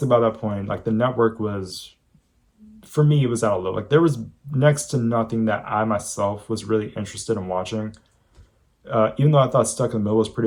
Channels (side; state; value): both; identical; correlation 1.00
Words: by that point, like the network was, for me, it was out of low. Like there was next to nothing that I myself was really interested in watching. Even though I thought Stuck in the Middle was